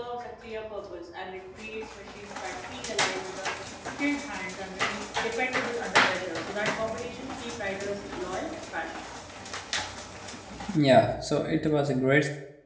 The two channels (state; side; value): identical; both; correlation 1.00